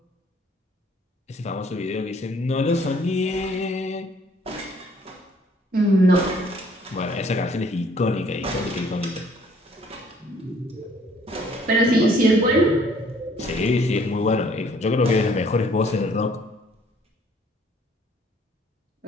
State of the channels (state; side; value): normal; both; correlation 0.60